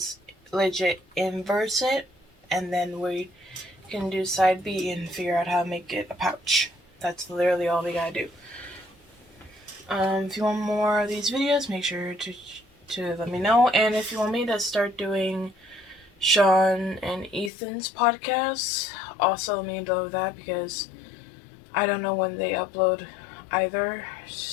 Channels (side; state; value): right; drops out; at 17.5 s